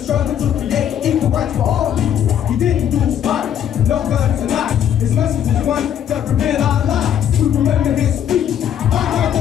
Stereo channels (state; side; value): quieter; right; 9.6 dB